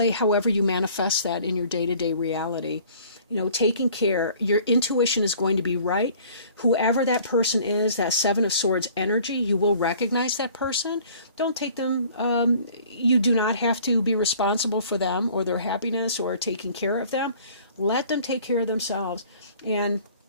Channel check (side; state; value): both; inverted; correlation -0.52